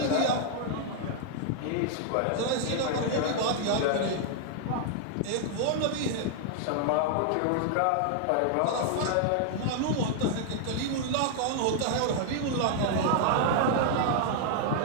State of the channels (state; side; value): different; both; correlation 0.00